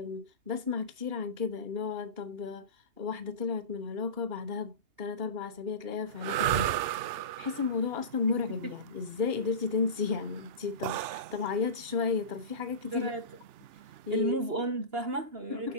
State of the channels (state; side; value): late; left; 2.8 ms